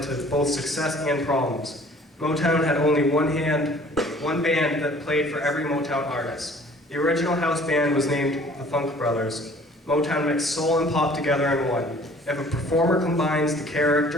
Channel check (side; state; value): both; normal; correlation 0.52